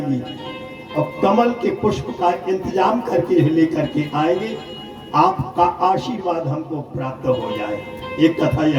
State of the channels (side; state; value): both; identical; correlation 1.00